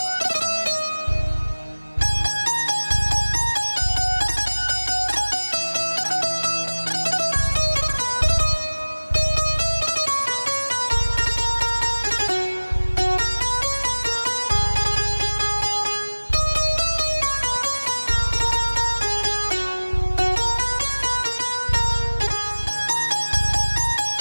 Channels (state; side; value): inverted; both; correlation -1.00